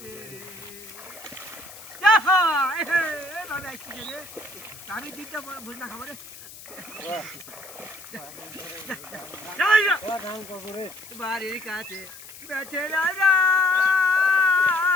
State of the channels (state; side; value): noise; left; hiss, 16 dB below the sound